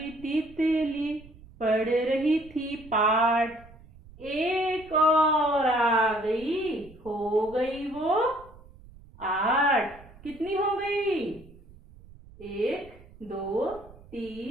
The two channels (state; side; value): noise; right; rumble, 22 dB below the sound